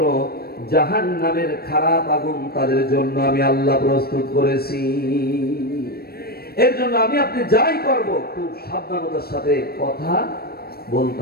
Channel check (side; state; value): right; late; 0.45 ms